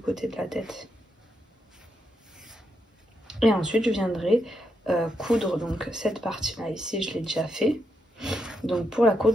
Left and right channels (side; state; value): both; normal; correlation 0.81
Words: de la tête. Et ensuite, je viendrai coudre donc cette partie-là. Ici, je l'ai déjà fait. Donc pour la